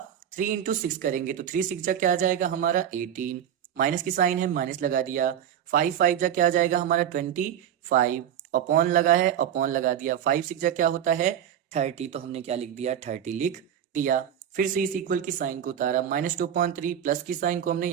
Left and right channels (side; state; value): left; quieter; 9.7 dB